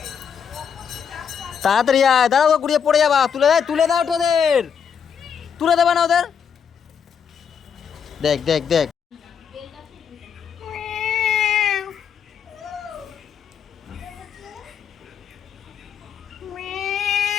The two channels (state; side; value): quieter; right; 7.3 dB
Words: তাড়াতাড়ি আয়। দাঁড়াও, গুড়িয়ে পড়ে যাবা। তুলে দেয়, তুলে দাও ওদের, তুলে দেবা না ওদের। দেখ দেখ দেখ,